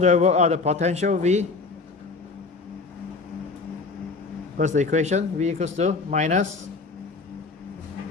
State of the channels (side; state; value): right; quieter; 4.0 dB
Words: I work out the potential V? What's the equation? V equals to minus